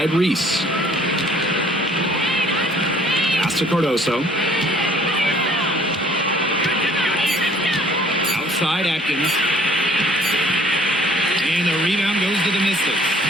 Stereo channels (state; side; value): normal; both; correlation 0.57